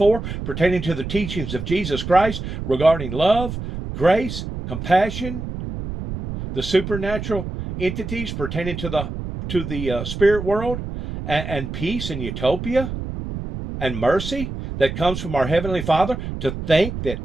pertaining to the teachings of Jesus Christ regarding love, grace, compassion, the supernatural entities pertaining to the spirit world, and peace and utopia and mercy that comes from our Heavenly Father. To think that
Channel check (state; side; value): noise; right; rumble, 7 dB below the sound